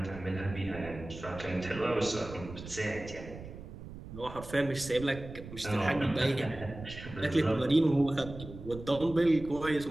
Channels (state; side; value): noise; right; rumble, 13 dB below the sound